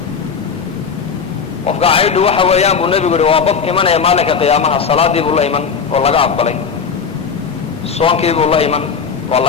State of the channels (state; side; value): quieter; right; 6.0 dB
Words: qofka caydhu waxa weeyaan buu nebigu yihi waa qof imanaya maalinka qiyaamaha salaadii buu la iman oo laga aqbalay, soonkii buu la iman oo